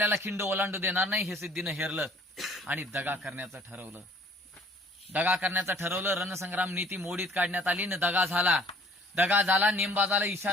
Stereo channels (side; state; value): both; normal; correlation 0.55